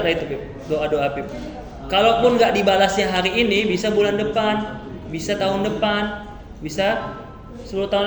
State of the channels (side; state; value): both; identical; correlation 1.00